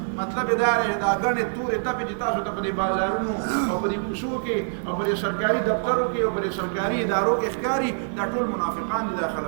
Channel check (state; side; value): silent; left; digital silence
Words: مطلب یې دا دی دا ګڼې تورې تپې چې تاسو ته په دې بازارونو او په دې کوڅو کې او په دې سرکاري دفترو کې او په دې سرکاري ادارو کې ښکاري، دا ټول منافقان دي دا